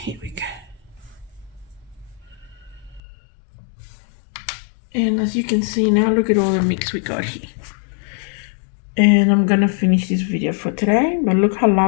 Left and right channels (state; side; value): drops out; right; at 3.0 s